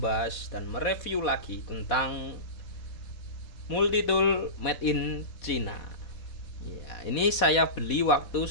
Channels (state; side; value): late; right; 4.2 ms